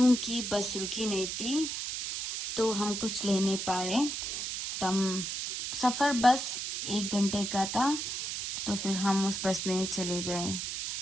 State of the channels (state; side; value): noise; right; hiss, 4 dB below the sound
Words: बस रुकी नहीं थी। तो हम कुछ ले नहीं पाए। तब सफ़र बस 1 घंटे का था, तो फिर हम उस बस में चले गए।